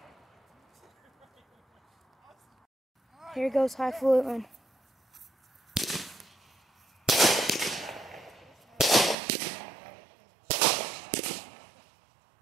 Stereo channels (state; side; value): drops out; left; at 9.2 s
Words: Here goes highfalutin.